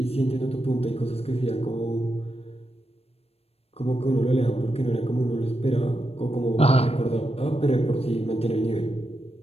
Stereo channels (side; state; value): right; late; 0.29 ms